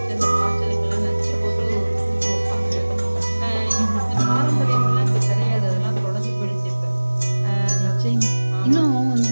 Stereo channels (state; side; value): inverted; both; correlation -1.00